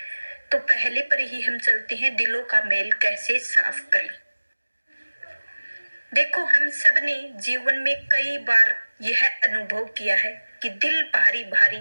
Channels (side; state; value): both; inverted; correlation -1.00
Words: तो पहले पर ही हम चलते हैं, दिलों का मैल कैसे साफ करें। देखो, हम सब ने जीवन में कई बार यह अनुभव किया है कि दिल भारी